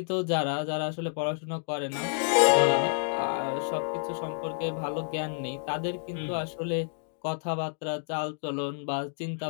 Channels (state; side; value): silent; right; digital silence